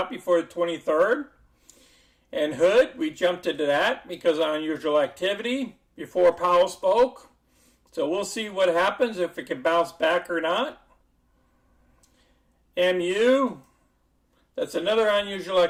before the 23rd. And Hood, we jumped into that because of unusual activity before Powell spoke. So we'll see what happens, if it can bounce back or not. MU, that's another unusual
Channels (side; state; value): both; identical; correlation 1.00